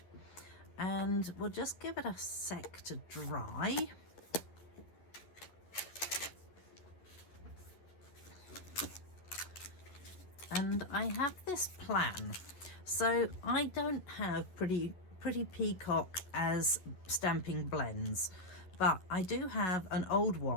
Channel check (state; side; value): late; right; 11 ms